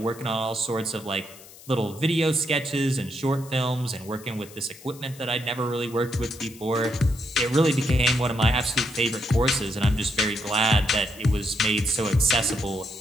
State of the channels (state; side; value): noise; left; hiss, 20 dB below the sound